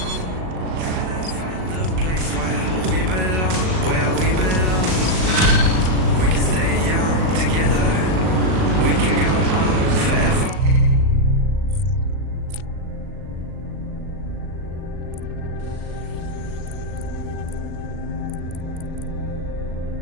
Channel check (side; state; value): left; late; 38 ms